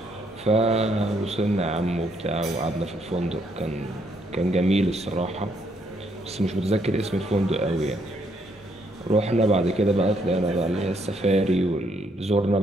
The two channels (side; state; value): both; normal; correlation 0.72